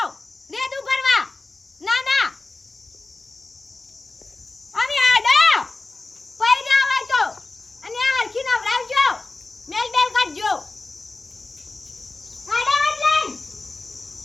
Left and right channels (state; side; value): quieter; right; 3.4 dB